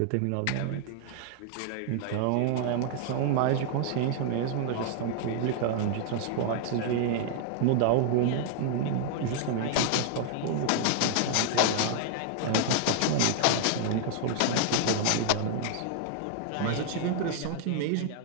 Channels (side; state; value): both; different; correlation 0.00